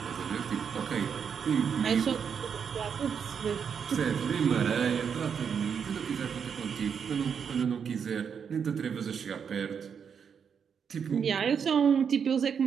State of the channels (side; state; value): left; quieter; 7.0 dB